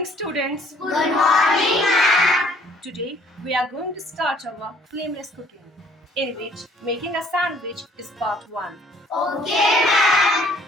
students. Good morning, ma'am. Today we are going to start our flameless cooking, in which making a sandwich is part 1. Okay, ma'am.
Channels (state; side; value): normal; both; correlation 0.60